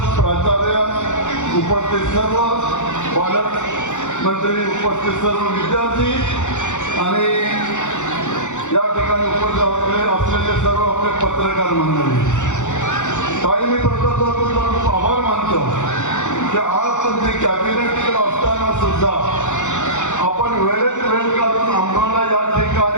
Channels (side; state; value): right; late; 0.85 ms